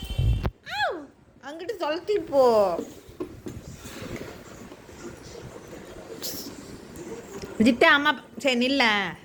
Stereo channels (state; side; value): identical; both; correlation 1.00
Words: அங்கிட்டு தொலைத்தி போ. ஜிட்ட அம்மா சரி நில்ல,